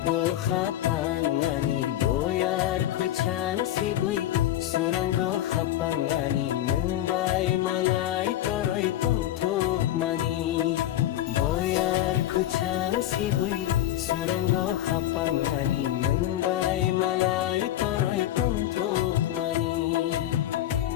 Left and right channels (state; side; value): quieter; right; 13.1 dB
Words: khapang ani boyar kuchang sibui surango khapang ani nungbai malai toroi tongthuk mani boyar kuchang sibui surango khapang ani nungbai malai toroi tongthuk mani